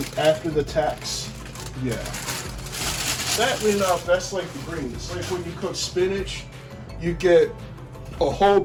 after the tax, yeah. Sadly enough, that's like the greens. Like when you cook spinach, you get a whole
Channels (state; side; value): identical; both; correlation 1.00